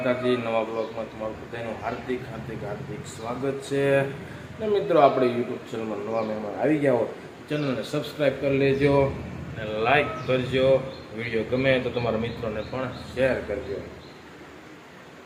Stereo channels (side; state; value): both; identical; correlation 1.00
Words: નવા બ્લોગમાં તમારું બધાનું હાર્દિક હાર્દિક હાર્દિક સ્વાગત છે। ને મિત્રો આપણે યુટ્યુબ ચેનલમાં નવા મહેમાન આવી ગયા હો, ચેનલને સબસ્ક્રાઈબ કરી લેજો અને લાઈક કરજો। વિડીયો ગમે તો તમારા મિત્રોને પણ શેર કરજો।